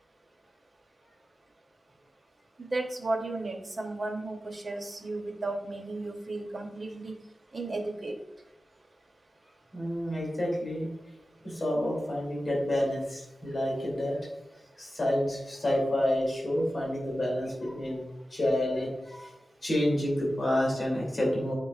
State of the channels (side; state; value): both; normal; correlation 0.93